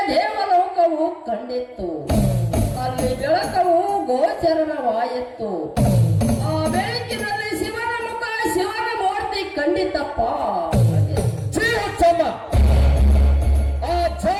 ದೇವಲೋಕವು ಕಂಡಿತ್ತು. ಅಲ್ಲಿ ಬೆಳಕವು ಗೋಚರವಾಯಿತು. ಆ ಬೆಳಕಿನಲ್ಲಿ ಶಿವನ ಮುಖ, ಶಿವನ ಮೂರ್ತಿ ಕಂಡಿತಪ್ಪ. ಆ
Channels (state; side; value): identical; both; correlation 1.00